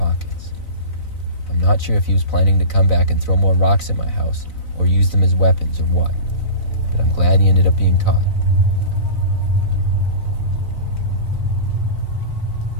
I'm not sure if he was planning to come back and throw more rocks at my house, or use them as weapons or what, but I'm glad he ended up being caught.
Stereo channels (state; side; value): late; right; 3.9 ms